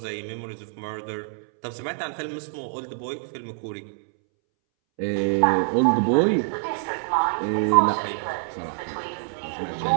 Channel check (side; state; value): left; silent; 61 dB below the other